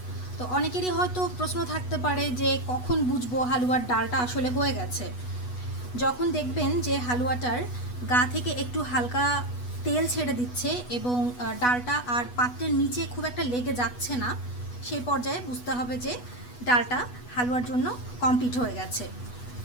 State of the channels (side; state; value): right; late; 8.1 ms